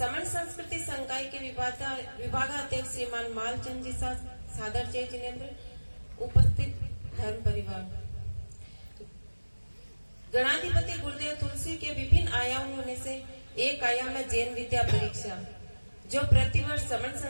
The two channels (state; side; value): inverted; both; correlation -1.00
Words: संस्कृति संकाय के विभागाध्यक्ष श्रीमान मालचंद जी सादर जय जिनेन्द्र, उपस्थित धर्म परिवार, गणाधिपति गुरुदेव तुलसी के विभिन्न आयामों में से एक आयाम है जैन विद्या परीक्षा, जो प्रतिवर्ष समर